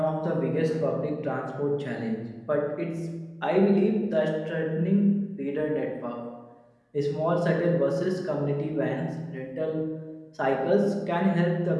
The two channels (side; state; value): both; identical; correlation 1.00